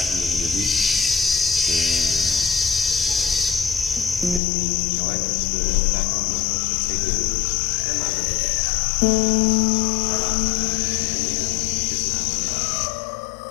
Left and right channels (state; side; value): drops out; right; at 4.4 s